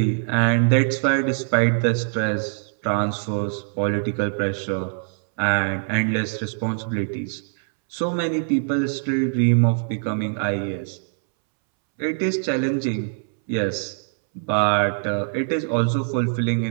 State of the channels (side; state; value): left; silent; 63 dB below the other